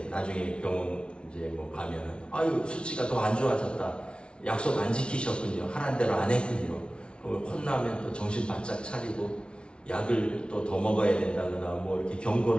나중에 병원 이제 뭐 가면은 아유 수치가 더 안 좋아졌다. 약속 안 지키셨군요. 하란 대로 안 했군요. 혼나면 또 정신 바짝 차리고 약을 또 더 먹어야 된다거나 뭐 이렇게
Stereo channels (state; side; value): late; right; 0.058 ms